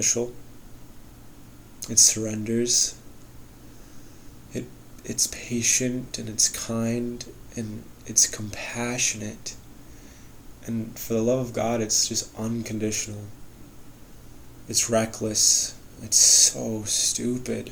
It surrenders. It's patient and it's kind and it's compassionate. And for the love of God, it's just unconditional. It's reckless. It's so stupid.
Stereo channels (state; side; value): identical; both; correlation 1.00